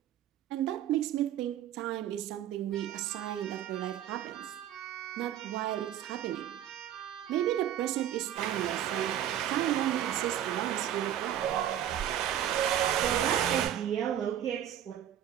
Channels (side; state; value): left; quieter; 10.9 dB